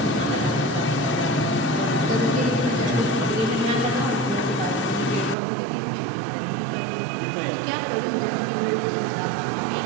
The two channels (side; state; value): left; drops out; at 5.4 s